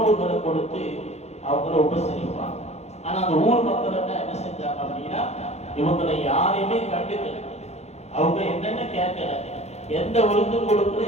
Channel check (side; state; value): right; late; 0.31 ms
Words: கொடுத்து அவங்கள உபசரிப்பாங்க. ஆனா அந்த ஊர் மக்கள் என்ன செஞ்சாங்க அப்படின்னா, இவங்களை யாரையுமே கண்டுக்கல, அவங்க என்னென்ன கேட்கல, எந்த விருந்தும் கொடுக்கல,